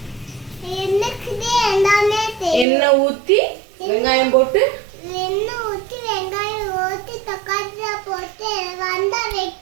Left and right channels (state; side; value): drops out; left; at 2.7 s